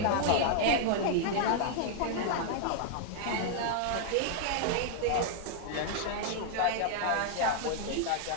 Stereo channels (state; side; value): different; both; correlation 0.00